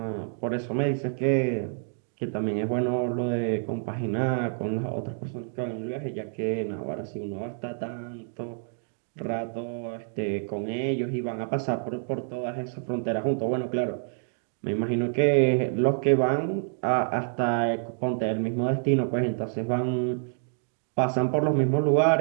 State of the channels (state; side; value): silent; left; 60 dB below the other